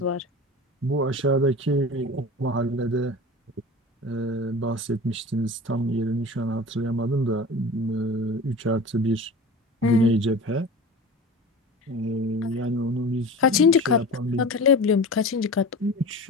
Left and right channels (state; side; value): normal; both; correlation 0.35